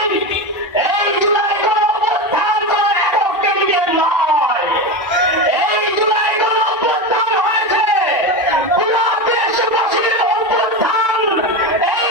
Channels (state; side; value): normal; both; correlation 0.19